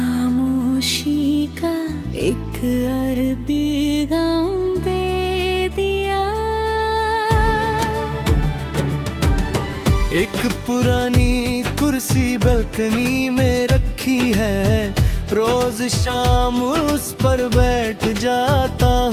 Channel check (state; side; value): identical; both; correlation 1.00